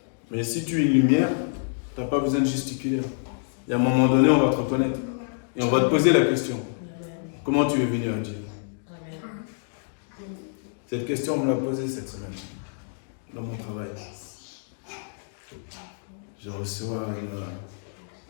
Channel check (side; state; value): right; silent; digital silence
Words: Mais si tu es une lumière, tu n'as pas besoin de gesticuler. Et à un moment donné, on va te reconnaître. Et on va te poser la question. Comment tu es venu à Dieu? Cette question, on me l'a posée cette semaine, dans mon travail. Je